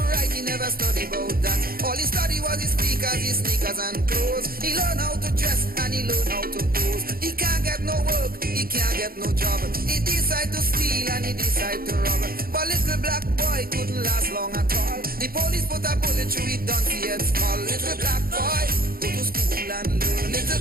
write, he never studied about that. All he studied was his sneakers and clothes. He learned how to dress and he learned how to pose. He can't get no work, he can't get no job. He decide to steal and he decide to rob. But little black boy couldn't last long at all. The police put a bullet through his donkey head skull. Little black boy, go to school and learn. Little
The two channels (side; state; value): left; late; 0.43 ms